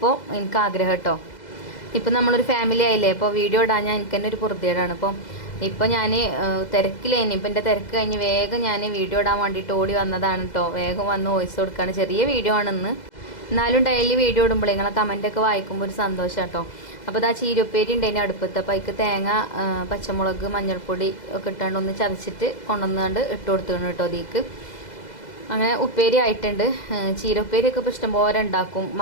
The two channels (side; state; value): right; late; 2.0 ms